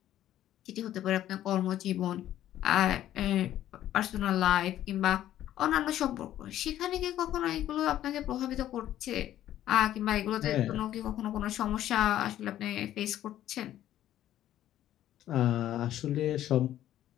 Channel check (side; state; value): right; quieter; 12.5 dB